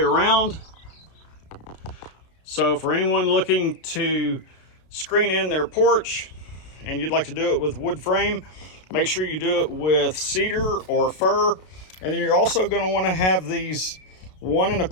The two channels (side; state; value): right; late; 32 ms